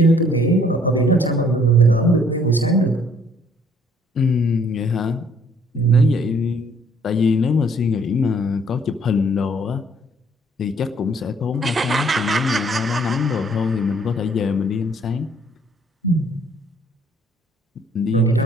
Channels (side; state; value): both; normal; correlation 0.61